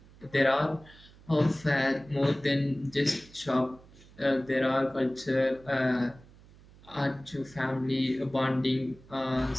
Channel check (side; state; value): right; noise; hum, 24 dB below the sound